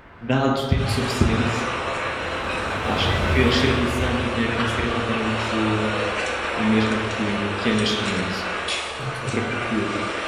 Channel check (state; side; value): identical; both; correlation 1.00